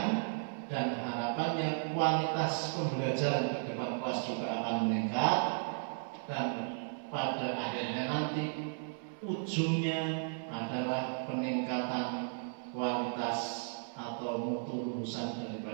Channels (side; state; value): left; silent; 55 dB below the other